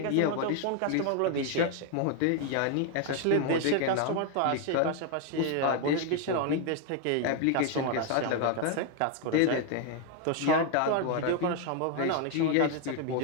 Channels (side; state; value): both; different; correlation 0.00